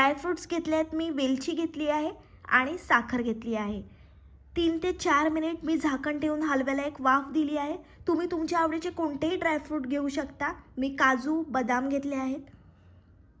घेतले आहेत मी, वेलची घेतली आहे आणि साखर घेतली आहे. 3 ते 4 मिनिट मी झाकण ठेवून हलव्याला एक वाफ दिली आहे. तुम्ही तुमच्या आवडीचे कोणतेही ड्रायफ्रूट घेऊ शकता. मी काजू, बदाम घेतले आहेत.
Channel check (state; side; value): identical; both; correlation 1.00